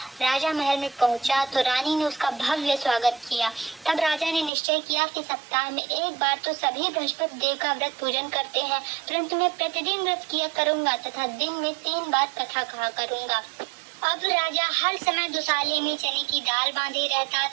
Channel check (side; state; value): left; drops out; at 4.5 s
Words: राजा महल में पहुंचा तो रानी ने उसका भव्य स्वागत किया। तब राजा ने निश्चय किया कि सप्ताह में एक बार तो सभी बृहस्पति देव का व्रत पूजन करते हैं, परंतु मैं प्रतिदिन व्रत किया करूंगा तथा दिन में 3 बार कथा कहा करूंगा। अब राजा हर समय दुसाले में चने की दाल बांधे रहता